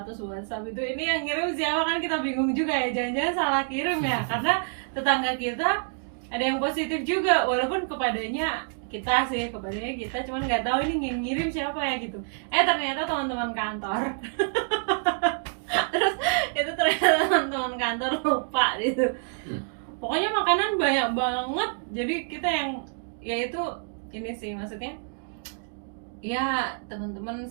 WhatsApp itu, ini yang ngirim siapa kan kita bingung juga ya, jangan-jangan salah kirim ya, karena tetangga kita ada yang positif juga, walaupun kepadanya kita, cuman nggak tahu ini yang ngirim siapa ya gitu. Ternyata teman-teman kantor. Terus itu ternyata teman-teman kantor lupa gitu. Pokoknya makanan banyak banget, jadi kita yang ya itu ini sih maksudnya ya, teman-teman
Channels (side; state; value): left; silent; 60 dB below the other